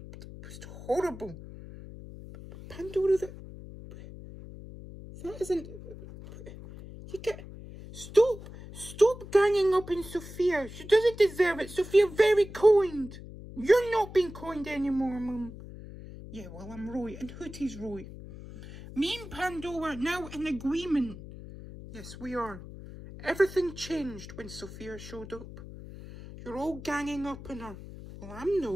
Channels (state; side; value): noise; left; hum, 14 dB below the sound